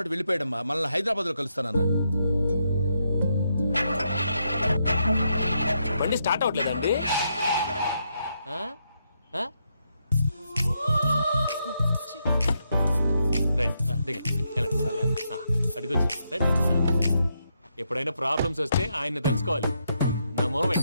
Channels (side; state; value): both; inverted; correlation -0.80